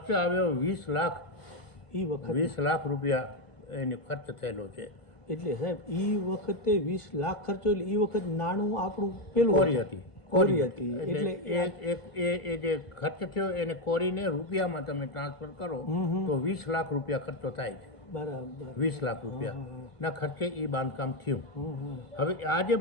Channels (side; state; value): right; late; 1.5 ms